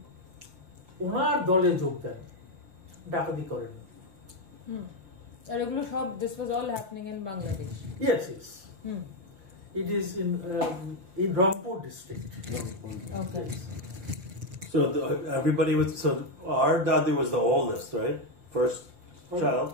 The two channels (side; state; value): left; late; 5.3 ms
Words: ওনার দলে যোগ দেন, ডাকাতি করেন। আর এগুলো সব, this was all happening in Bangladesh? Yes. It is in Rangpur district. Okay. Yes. So everybody was, so our dadu was the oldest, right? First child.